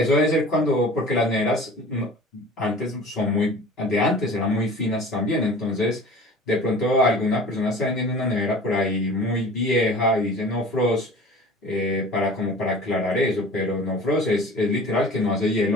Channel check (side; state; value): both; normal; correlation 0.41